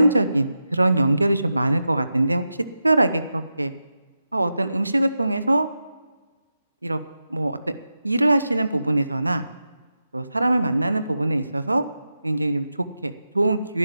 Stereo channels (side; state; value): both; inverted; correlation -0.90